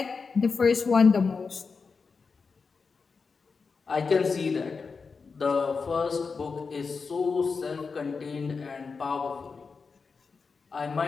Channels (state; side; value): quieter; right; 4.9 dB